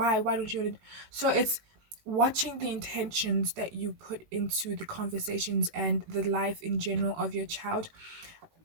don't you want to? So it's watching the intentions that you put into the conversations and the life in general of your child.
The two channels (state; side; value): late; left; 19 ms